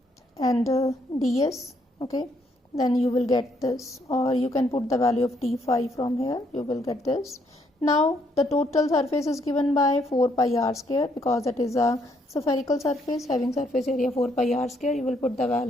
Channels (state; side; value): normal; both; correlation 0.71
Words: and ds. Okay, then you will get this, or you can put the value of d phi from here. You will get this. Now the total surface is given by 4 pi r square because that is a spherical surface having surface area 4 pi r square. You will put the